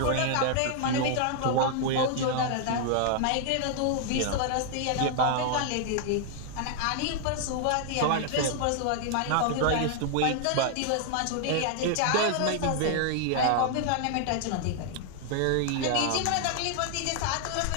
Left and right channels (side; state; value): both; different; correlation 0.00